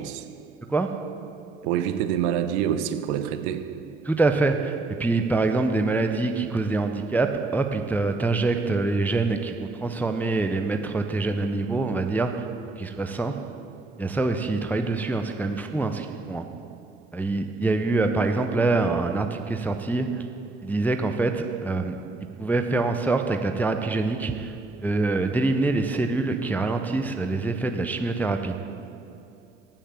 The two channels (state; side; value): quieter; left; 3.2 dB